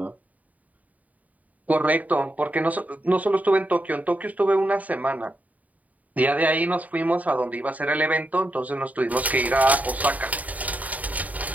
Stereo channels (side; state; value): left; late; 0.073 ms